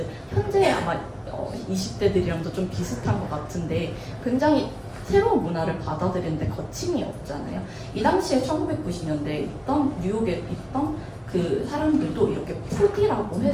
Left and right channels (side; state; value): both; identical; correlation 1.00